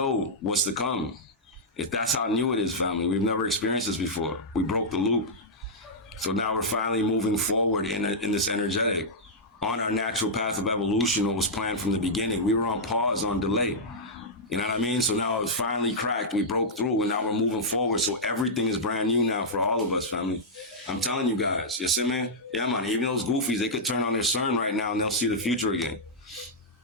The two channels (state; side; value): normal; both; correlation -0.08